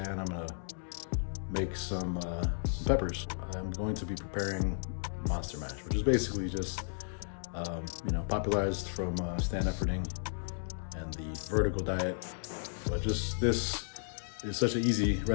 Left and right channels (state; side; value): silent; right; digital silence